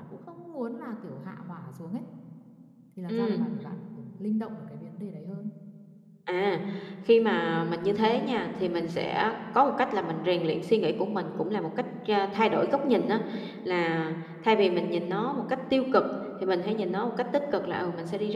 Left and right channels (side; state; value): both; identical; correlation 1.00